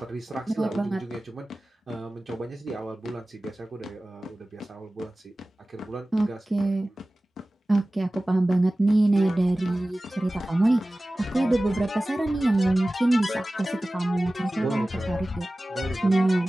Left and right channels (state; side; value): normal; both; correlation 0.97